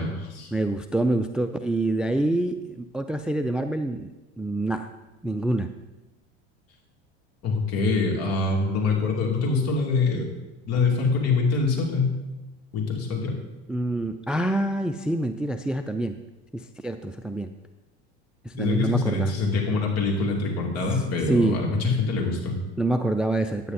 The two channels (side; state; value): both; normal; correlation 0.56